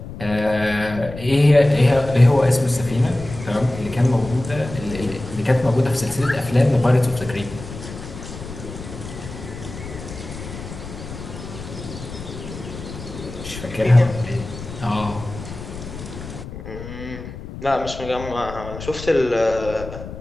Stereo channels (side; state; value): left; noise; rumble, 11 dB below the sound